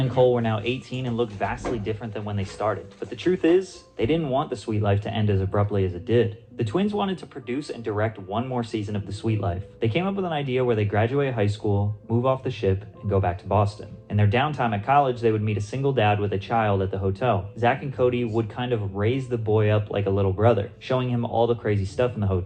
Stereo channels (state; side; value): identical; both; correlation 1.00